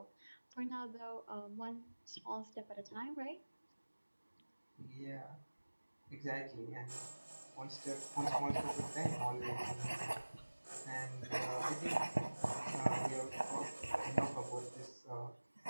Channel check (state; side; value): inverted; both; correlation -1.00